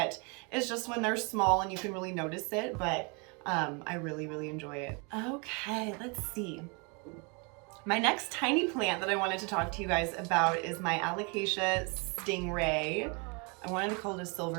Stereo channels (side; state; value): left; quieter; 32.4 dB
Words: is just when they're small and you can really notice it, but I really enjoy it. Okay, let's see. My next tiny plant that I wanted to talk to you guys about is my Alocasia stingray. I wanted to call it a